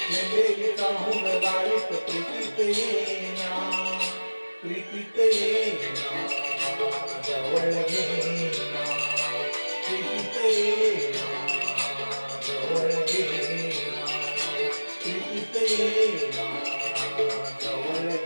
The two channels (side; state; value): both; inverted; correlation -1.00